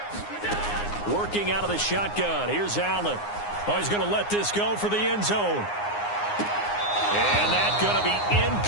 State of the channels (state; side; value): late; right; 9.7 ms